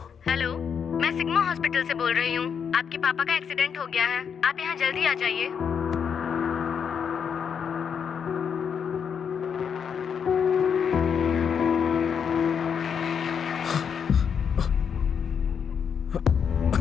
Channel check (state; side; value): quieter; right; 7.1 dB